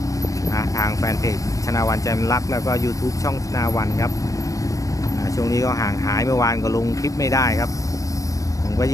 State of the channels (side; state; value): right; late; 0.16 ms